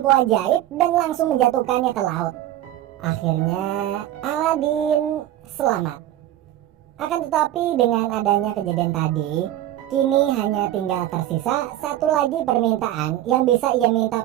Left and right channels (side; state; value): left; quieter; 13.3 dB